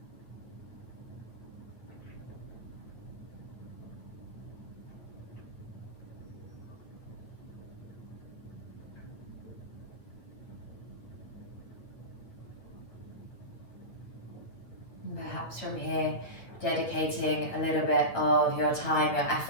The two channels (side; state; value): right; late; 8.5 ms